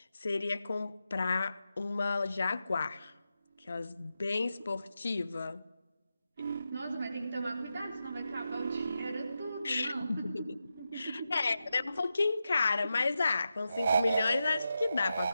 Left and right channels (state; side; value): inverted; both; correlation -0.89